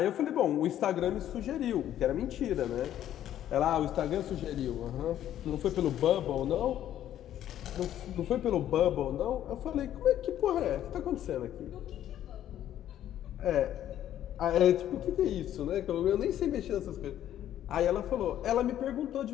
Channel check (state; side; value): quieter; right; 11.6 dB